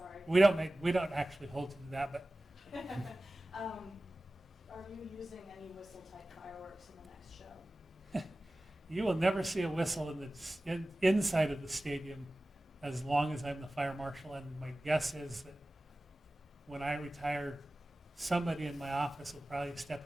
We don't actually hold to that, but Are you using any whistle type fireworks in the next show? you will never see a whistle inside of the stadium as long as I'm the fire marshal. And my guess is that when I retire, somebody in my office will probably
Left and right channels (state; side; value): normal; both; correlation 0.97